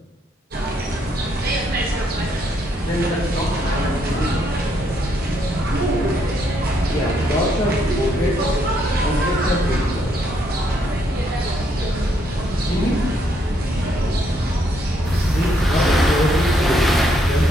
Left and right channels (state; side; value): normal; both; correlation 0.73